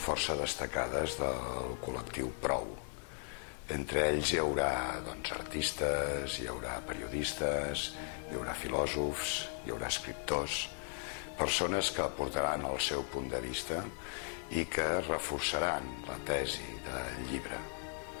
força destacades del col·lectiu Prou. Entre ells hi haurà artistes, hi haurà periodistes, hi haurà filòsofs, hi haurà escriptors, persones que aportaran el seu punt de vista i que reforçaran la tesi del llibre.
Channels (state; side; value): silent; right; 53 dB below the other